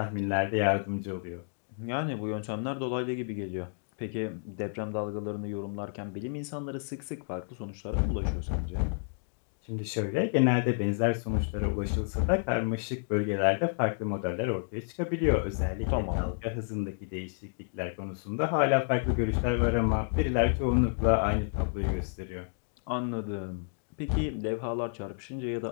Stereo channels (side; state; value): right; silent; digital silence